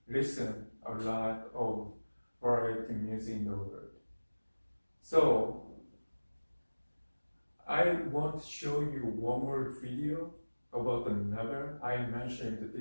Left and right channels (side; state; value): both; inverted; correlation -1.00